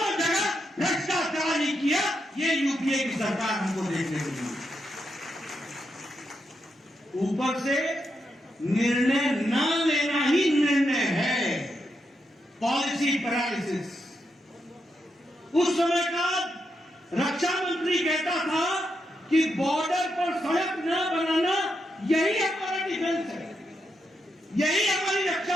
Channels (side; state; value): both; normal; correlation 0.83